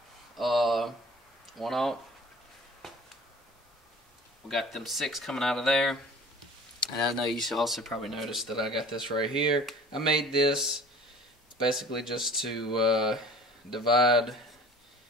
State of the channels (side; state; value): both; normal; correlation 0.46